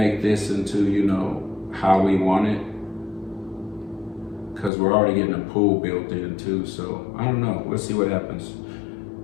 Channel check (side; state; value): right; drops out; at 4.7 s